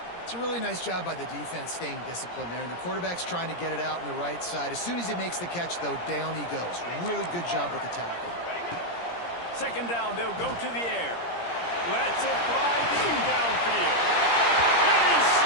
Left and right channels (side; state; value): right; late; 17 ms